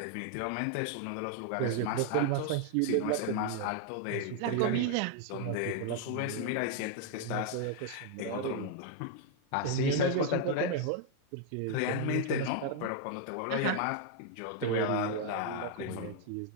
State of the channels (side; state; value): both; different; correlation 0.00